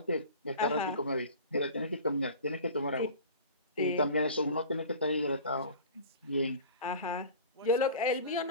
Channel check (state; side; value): inverted; both; correlation -0.40